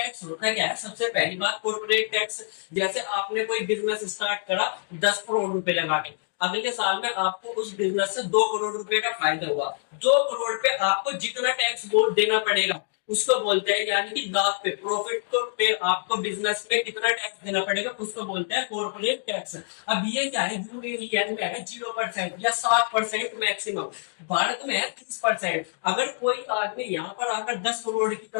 होता है क्या है, सबसे पहली बात कॉर्पोरेट टैक्स, जैसे आपने कोई बिजनेस स्टार्ट करा 10 करोड़ रुपए लगा के, अगले साल में आपको उस बिजनेस से 2 करोड़ रुपए का फायदा हुआ, 2 करोड़ पे आपको जितना टैक्स देना पड़ेगा उसको बोलते हैं, यानी कि लाभ पे, प्रॉफिट को पे आपको बिजनेस पे कितना टैक्स देना पड़ेगा उसको बोलते हैं कॉर्पोरेट टैक्स। अब ये क्या है, यूएई में है 0% या 7% मैक्सिमम, भारत में है 30%। अगर कोई आदमी यहाँ पर आकर 10 करोड़ की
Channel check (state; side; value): silent; right; digital silence